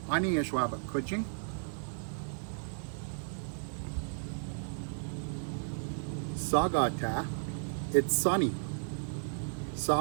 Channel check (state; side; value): silent; left; digital silence